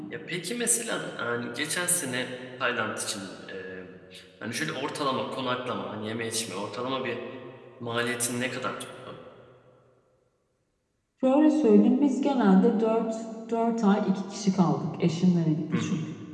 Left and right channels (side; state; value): both; identical; correlation 1.00